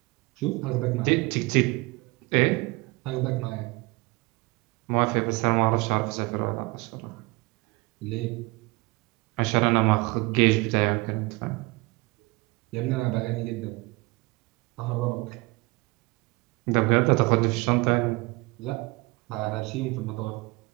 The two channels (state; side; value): quieter; left; 24.5 dB